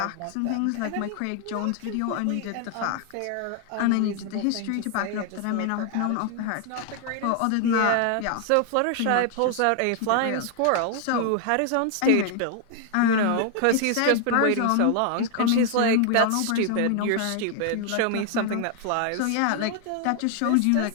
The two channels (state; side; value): different; both; correlation 0.00